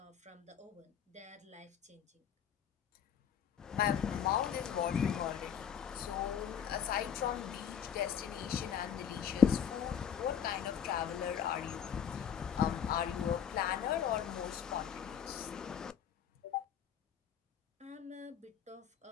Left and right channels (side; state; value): right; quieter; 8.1 dB